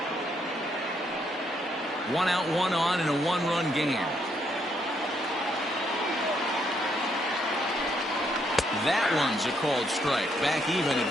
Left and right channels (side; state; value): both; normal; correlation 0.74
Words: 1 out, 1 on in a 1-run game. That one's a called strike. Back even